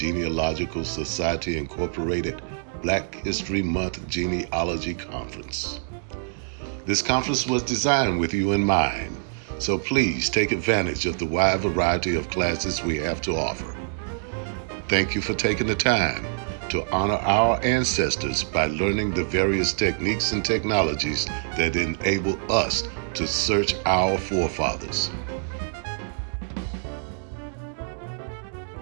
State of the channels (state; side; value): silent; left; digital silence